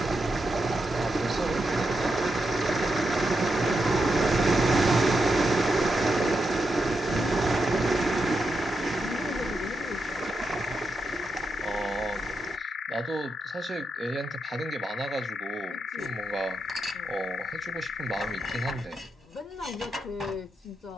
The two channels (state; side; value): normal; both; correlation 0.85